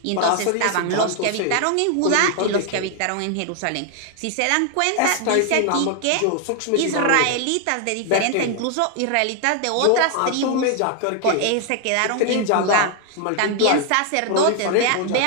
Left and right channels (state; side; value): different; both; correlation 0.00